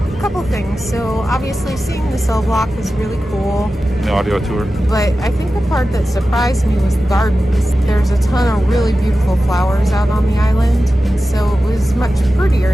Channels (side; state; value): both; normal; correlation 0.94